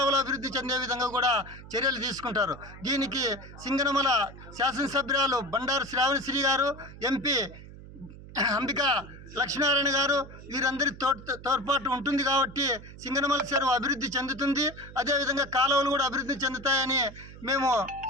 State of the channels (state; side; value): noise; right; hum, 16 dB below the sound